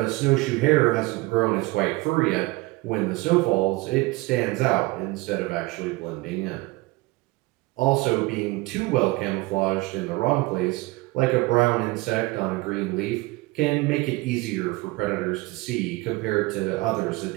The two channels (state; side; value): quieter; left; 22.1 dB